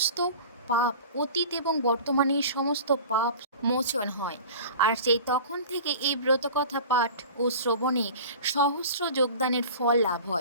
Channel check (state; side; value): inverted; both; correlation -0.38